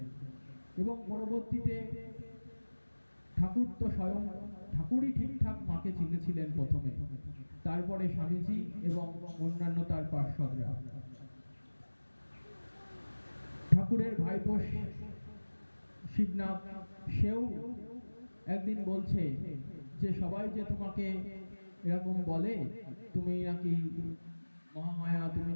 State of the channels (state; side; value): inverted; both; correlation -1.00